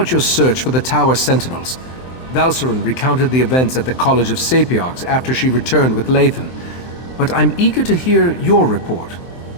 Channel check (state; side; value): late; right; 23 ms